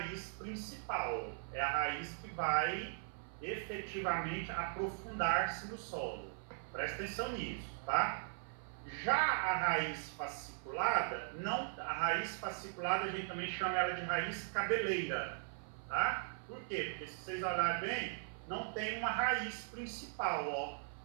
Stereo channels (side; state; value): left; silent; 51 dB below the other